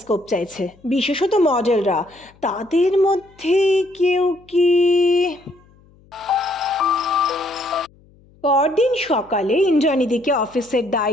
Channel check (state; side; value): noise; left; hum, 29 dB below the sound